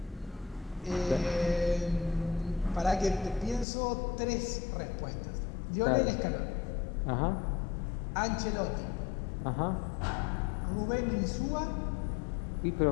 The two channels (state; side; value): drops out; right; at 3.7 s